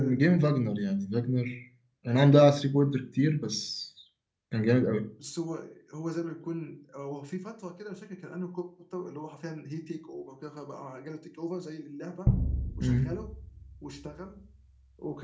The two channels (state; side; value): identical; both; correlation 1.00